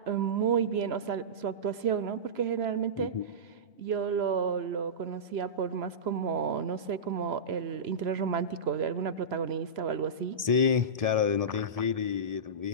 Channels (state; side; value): late; left; 1.7 ms